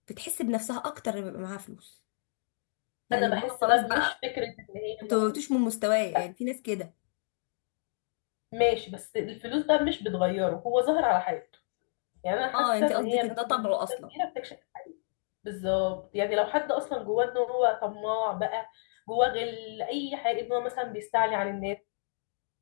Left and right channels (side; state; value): right; silent; digital silence